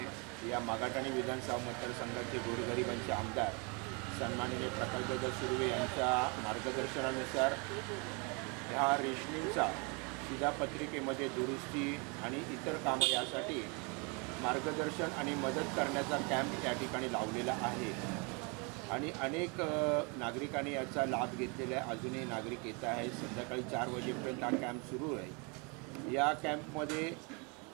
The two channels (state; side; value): quieter; left; 32.3 dB